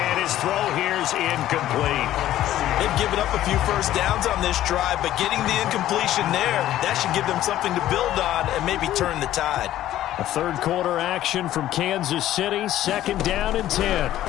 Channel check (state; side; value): quieter; right; 13.3 dB